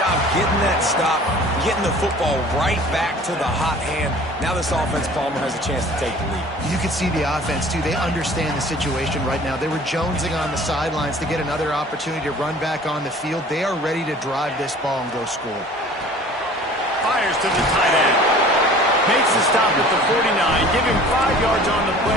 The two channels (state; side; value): normal; both; correlation 0.47